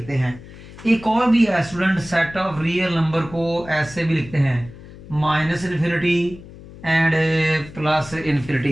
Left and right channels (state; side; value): noise; left; hum, 17 dB below the sound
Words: हैं। एक और भी है student, set of real number को ऐसे भी लिखते हैं -इन्फिनिटी एंड